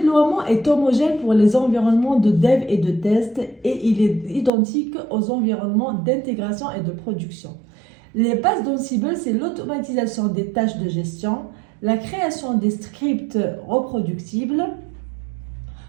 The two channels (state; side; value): drops out; left; at 4.5 s